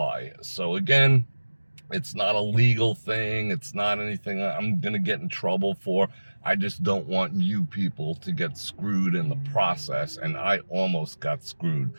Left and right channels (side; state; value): both; inverted; correlation -1.00